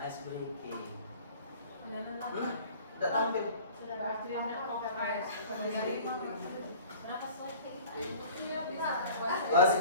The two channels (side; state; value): both; inverted; correlation -0.46